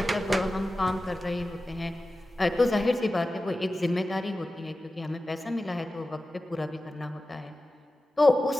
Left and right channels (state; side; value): normal; both; correlation 0.95